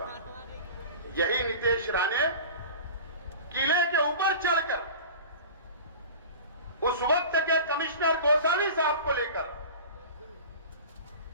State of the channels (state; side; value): inverted; both; correlation -0.36